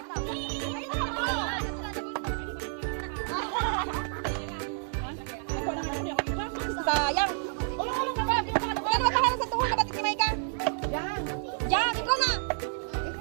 Sayang. Yan, makaharap sa tuhod na batik ni Maika. Yan. Yan, ikaw na.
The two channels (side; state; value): left; silent; digital silence